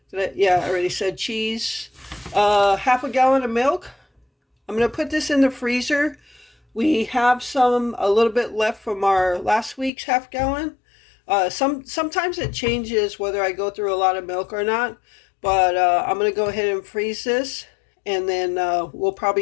Yeah, I already said cheese. Half a gallon of milk. I'm going to put this in the freezer. We have a little bit left from our last week's half gallon. Sometimes it changes whether I go through a lot of milk or not. But I'm going to go ahead and freeze this. And then we'll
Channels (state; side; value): drops out; right; at 9.9 s